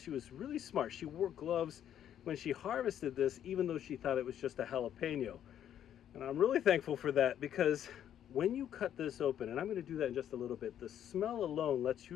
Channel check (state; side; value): quieter; right; 10.2 dB